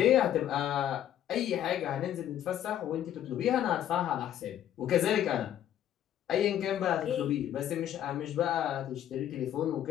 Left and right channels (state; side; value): quieter; right; 11.0 dB